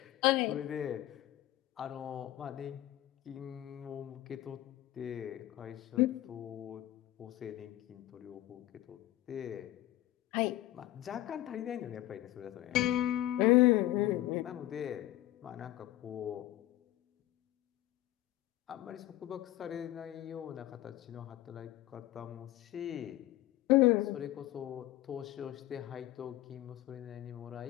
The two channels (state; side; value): quieter; right; 14.9 dB